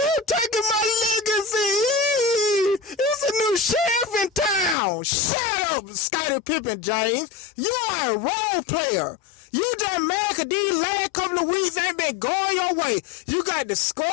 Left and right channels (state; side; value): drops out; right; at 4.8 s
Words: taking my legacy. It's a new sheriff in town. Shut up, Scottie Pippen James. You are a role player. You just mad because these last couple of weeks ain't been going your way. You got